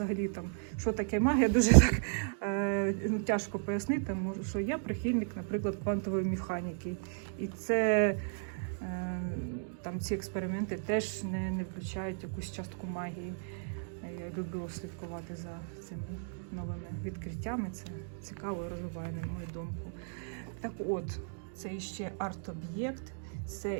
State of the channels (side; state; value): left; silent; digital silence